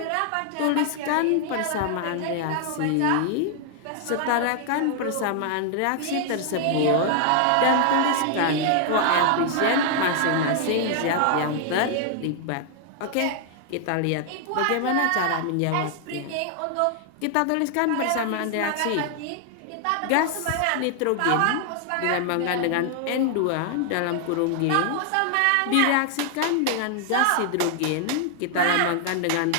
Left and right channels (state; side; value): different; both; correlation 0.00